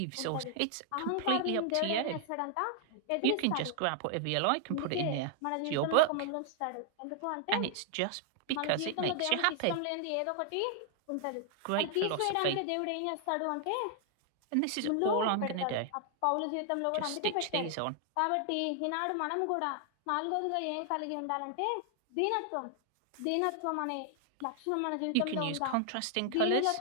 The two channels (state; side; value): different; both; correlation 0.00